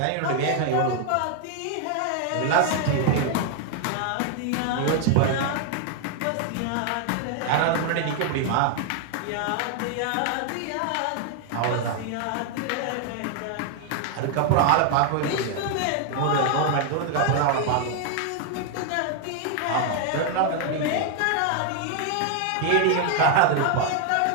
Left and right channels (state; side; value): different; both; correlation 0.00